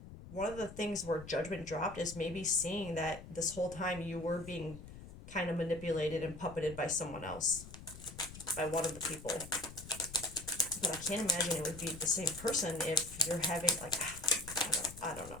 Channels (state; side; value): noise; left; rumble, 14 dB below the sound